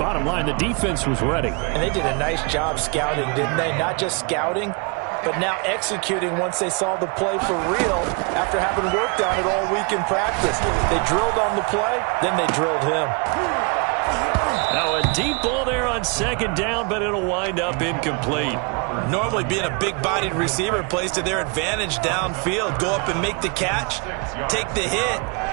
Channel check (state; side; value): quieter; left; 34.1 dB